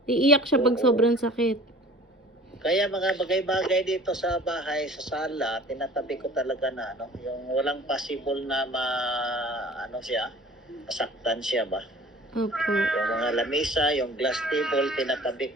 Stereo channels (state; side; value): normal; both; correlation 0.46